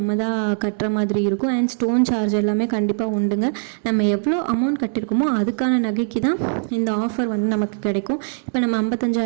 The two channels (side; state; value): left; silent; digital silence